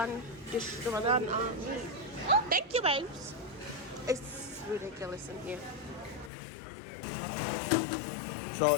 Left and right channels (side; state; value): right; drops out; at 6.3 s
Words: meat. Oh, thank you, babes. It's ridiculous in here.